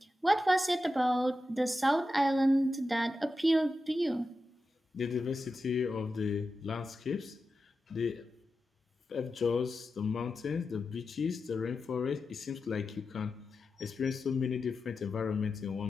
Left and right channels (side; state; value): both; normal; correlation 0.91